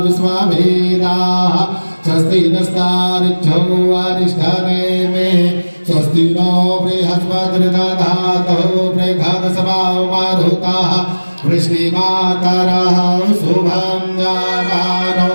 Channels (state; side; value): inverted; both; correlation -1.00